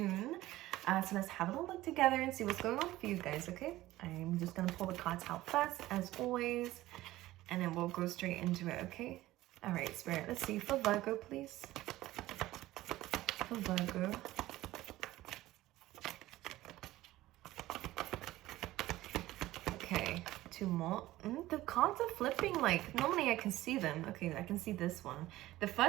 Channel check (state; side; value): quieter; left; 16.5 dB